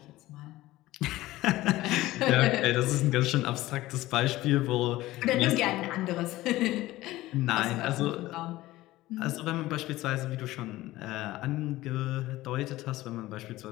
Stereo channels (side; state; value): right; quieter; 17.2 dB